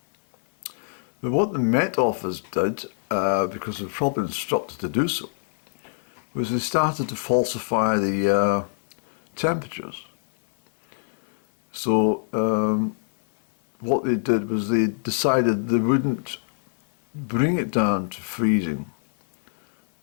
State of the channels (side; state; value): right; silent; digital silence